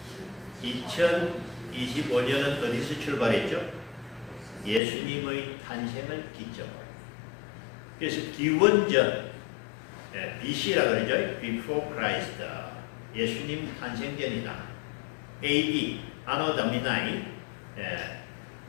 2025년은 어디서 출발했죠? 예수님의 탄생을 기점으로. 그래서 기원전, BC라고 그러죠. Before Christ. 예수님 탄생전이다. AD, Anno Domini,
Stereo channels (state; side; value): drops out; right; at 4.8 s